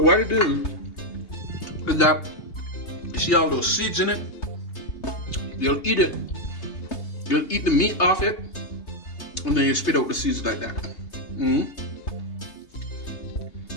it is that you see all those seeds in it. You'll eat it. You'll eat the meat off it, and then you spit out the seeds like that. And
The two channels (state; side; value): late; right; 3.3 ms